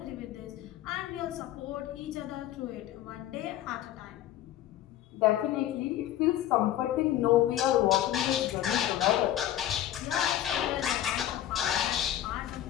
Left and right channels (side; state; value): right; quieter; 12.3 dB